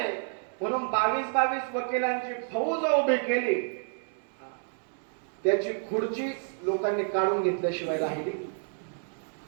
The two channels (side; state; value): left; silent; 58 dB below the other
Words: म्हणून 22 वकिलांची फौज उभी केली, त्याची खुर्ची लोकांनी काढून घेतल्याशिवाय राहिली.